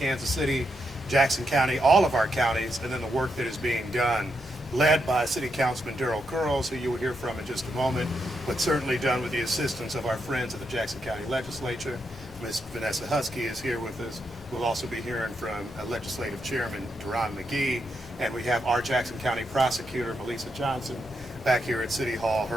City, Jackson County, all of our counties, and then the work that is being done, led by City Councilman Daryl Curls, who you will hear from in just a moment, but certainly done with the assistance of our friends at the Jackson County Legislature. Ms. Vanessa Husky is here with us. We'll also be hearing from Legislative Chairman Duran McGee, and we have our Jackson County Prosecutor, Melissa Johnson, back here at City Hall.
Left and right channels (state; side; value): normal; both; correlation 0.82